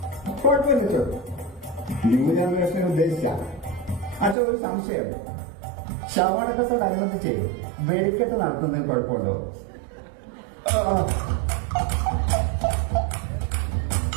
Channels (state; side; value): drops out; left; at 4.4 s